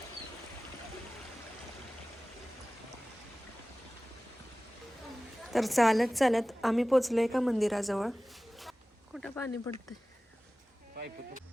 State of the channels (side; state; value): both; normal; correlation 0.97